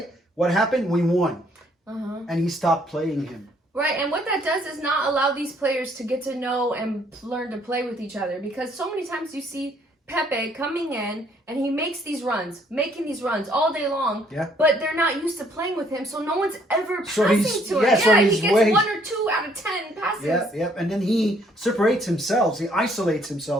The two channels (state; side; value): normal; both; correlation 0.65